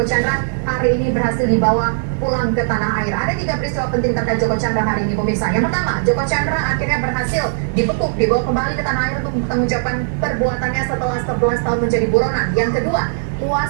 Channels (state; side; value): silent; left; digital silence